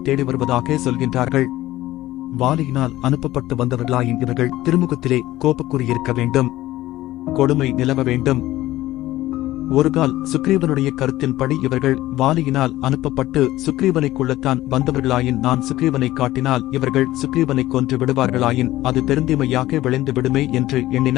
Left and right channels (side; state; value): right; quieter; 15.9 dB